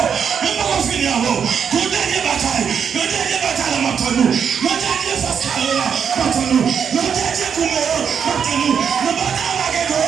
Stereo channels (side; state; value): left; quieter; 7.3 dB